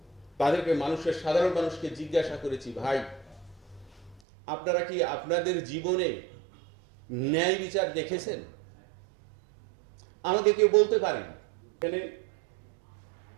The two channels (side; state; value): left; drops out; at 4.2 s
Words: সাধারণ মানুষকে জিজ্ঞাসা করেছি, ভাই আপনারা কি আপনাদের জীবনে ন্যায় বিচার দেখেছেন? আমাকে কেউ বলতে পারেন। এখানে